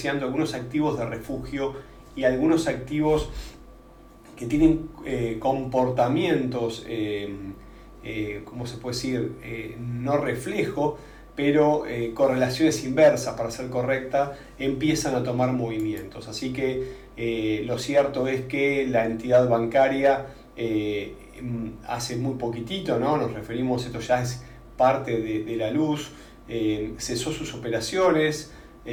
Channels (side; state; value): both; identical; correlation 1.00